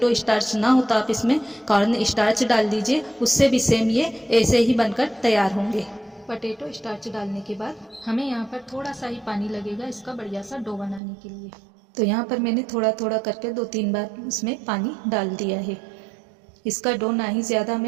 स्टार्च ना हो तो आप इसमें कॉर्न स्टार्च डाल दीजिए, उससे भी सेम ये ऐसे ही बनकर तैयार होंगे। पटेटो स्टार्च डालने के बाद हमें यहाँ पर थोड़ा सा ही पानी लगेगा इसका बढ़िया सा डो बनाने के लिए। तो यहाँ पर मैंने थोड़ा थोड़ा करके 2-3 बार इसमें पानी डाल दिया है। इसका डो ना ही ज़्यादा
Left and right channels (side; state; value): left; drops out; at 11.0 s